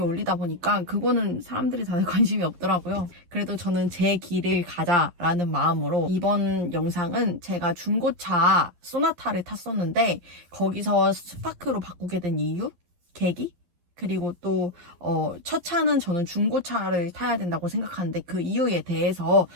올리다 보니까 그거는 사람들이 다들 관심이 없더라고요. 그래도 저는 제 길을 가자라는 마음으로 이번 영상은 제가 중고차 소나타를 탔었는데 거기서 스파크로 바꾸게 된 이유, 계기, 그리고 또 첫 차는 저는 중고차를 타야 된다고 생각하는데 그 이유에 대해서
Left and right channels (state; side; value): late; left; 11 ms